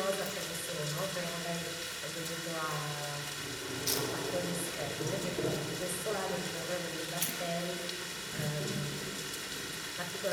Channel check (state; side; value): identical; both; correlation 1.00